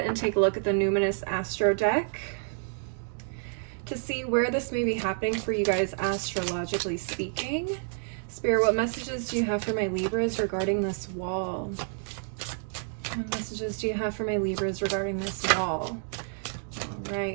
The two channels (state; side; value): silent; left; digital silence